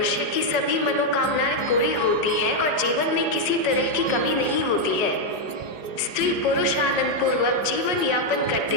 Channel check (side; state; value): right; late; 5.3 ms